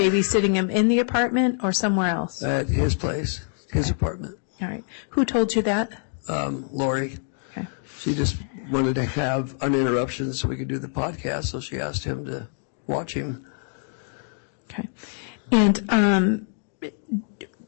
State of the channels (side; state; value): right; silent; 62 dB below the other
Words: him in the apartment or somewhere else? At his place, his apartment. All right. Who told you that? Lori. Okay. She just wanted to have uninterruptions so we could do the podcast, so she asked him to watch him. Okay. And